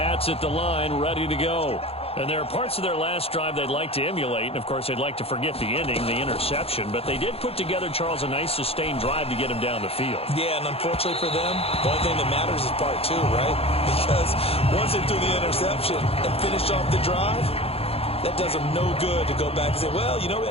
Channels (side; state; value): right; late; 0.28 ms